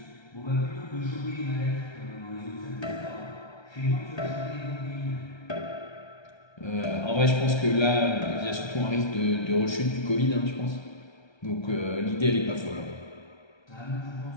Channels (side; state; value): right; late; 1.3 ms